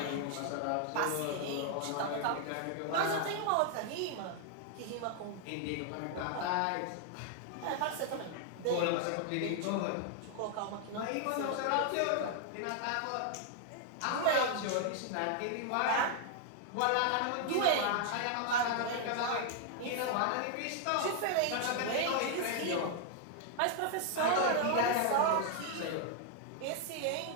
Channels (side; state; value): both; different; correlation 0.00